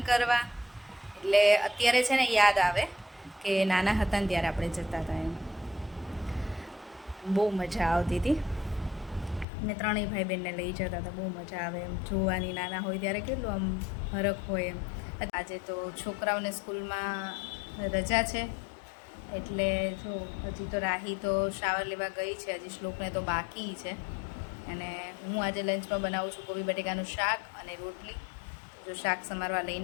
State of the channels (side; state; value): right; drops out; at 9.5 s